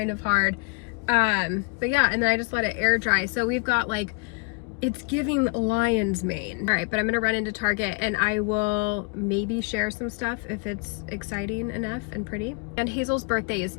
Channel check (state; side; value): quieter; right; 30.5 dB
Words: of hard. But yeah, and then I just let it air dry. So we've got like, it's giving lion's mane. All right, but I'm gonna run into Target and I will maybe share some stuff if it's exciting enough and pretty. And Hazel's birthday is